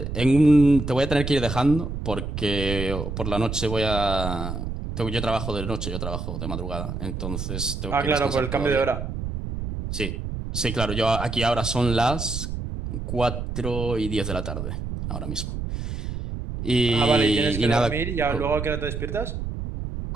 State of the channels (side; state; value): right; noise; rumble, 5 dB below the sound